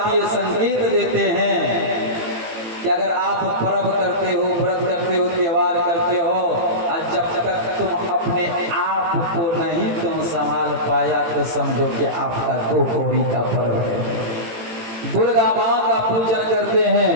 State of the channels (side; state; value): left; late; 18 ms